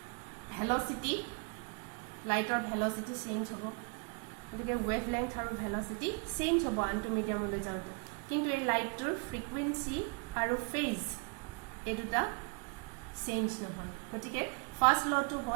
velocity lighter velocity change hobo gotike wavelength aru velocity change hobo antu medium ole jaute kintu ei light tur frequency aru phase eduta change no hoy gotike first law to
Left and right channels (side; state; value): left; quieter; 33.4 dB